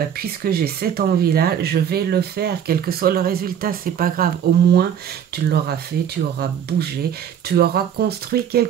puisque j'ai cette envie-là, je vais le faire, quel que soit le résultat, c'est pas grave. Au moins, tu l'auras fait, tu auras bougé, tu auras construit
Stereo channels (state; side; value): quieter; left; 8.8 dB